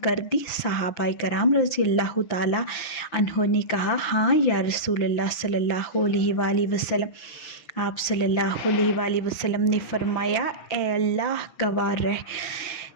کر دی؟ صحابہ کرام رضی اللہ تعالیٰ عنہ نے کہا ہاں یا رسول اللہ صلی اللہ علیہ وآلہ وسلم۔ آپ صلی اللہ علیہ وآلہ وسلم نے فرمایا اے اللہ گواہ رہ،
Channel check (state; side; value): late; right; 5.9 ms